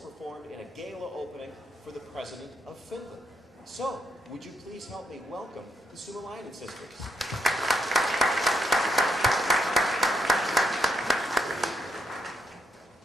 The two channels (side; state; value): both; normal; correlation 0.78